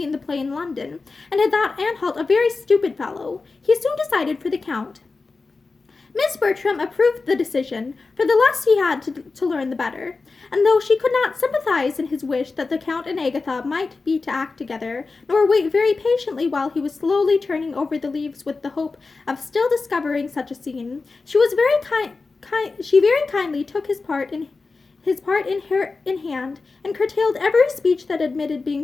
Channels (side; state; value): right; quieter; 4.0 dB